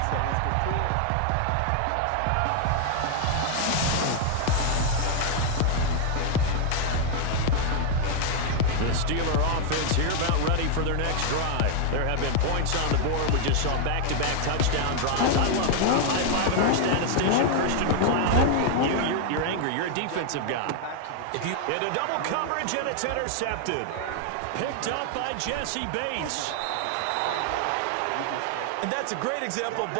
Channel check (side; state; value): both; different; correlation 0.00